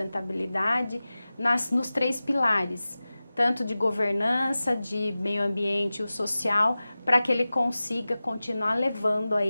nos 3 pilares, tanto de governança, de meio ambiente e o social, para que ele consiga continuar levando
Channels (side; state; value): both; inverted; correlation -0.96